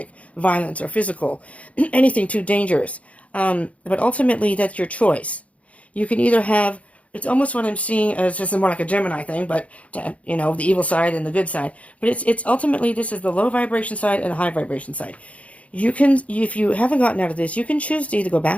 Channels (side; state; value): right; late; 0.065 ms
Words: violence or physical, anything too dangerous. But ultimately, that's your choice. You can either have, it's almost what I'm seeing as just more like a Gemini thing, but, the evil side and the good side. But it's ultimately, this is the low vibration side and the high vibration side. You can, if you haven't gotten out of this, you can choose to either go